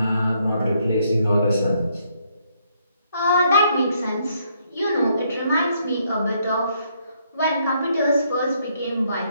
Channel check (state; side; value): inverted; both; correlation -0.72